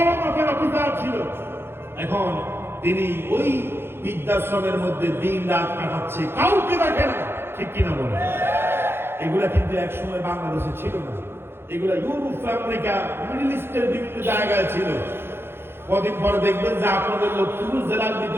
মাপের অফিসার ছিল। এখন তিনি ওই বৃদ্ধাশ্রমের মধ্যে দিন রাত কাটাচ্ছে, কাউকে দেখে না, ঠিক কিনা বলে? এগুলা কিন্তু একসময় বাংলাদেশে ছিল না, এগুলা ইউরোপ, আমেরিকা, মিডল ইস্টের বিভিন্ন জায়গায় ছিল। কদিন পরে দেখবেন যে আপনাদের লক্ষ্মীপুর জেলার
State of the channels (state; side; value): late; left; 0.11 ms